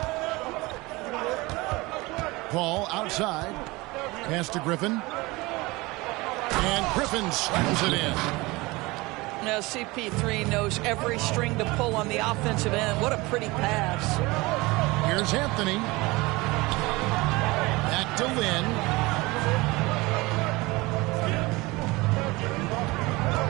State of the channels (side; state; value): left; quieter; 22.5 dB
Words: Paul outside. Pass to Griffin. And Griffin slams it in. Now CP3 knows every string to pull on the offensive end. What a pretty pass. Here's Anthony. Back to Lynn.